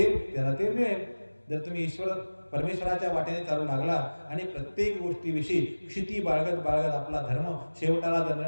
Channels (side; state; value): both; inverted; correlation -1.00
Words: त्याला ते मिळेल. जर तुम्ही परमेश्वराच्या वाटेने चालू लागला आणि प्रत्येक गोष्टीविषयी क्षिती बाळगत आपला धर्म शेवटाला धरला